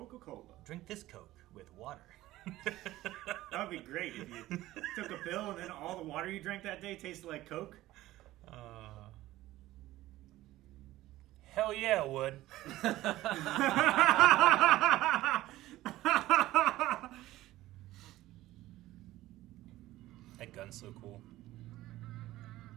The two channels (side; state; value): left; quieter; 16.1 dB